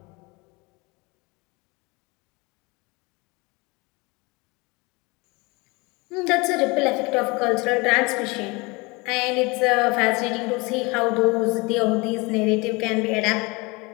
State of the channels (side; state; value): right; quieter; 26.0 dB